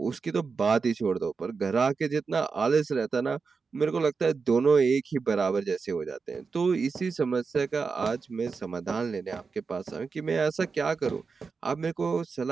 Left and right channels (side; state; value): left; quieter; 4.9 dB